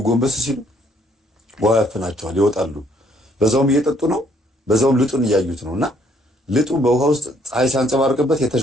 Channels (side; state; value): both; normal; correlation 0.66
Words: ጎንበስ ሲሉ ውሃ ያፍናቸዋል፣ ይወጣሉ። በዛውም እየጠጡ ነው፣ በዛውም ልጡን እያዩት ነውና ልጡ በውሃ ውስጥ ፀሐይ ሲያንጸባርቅበት